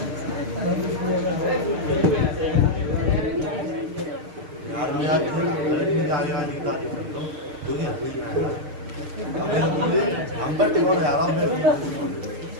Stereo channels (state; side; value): late; left; 6.6 ms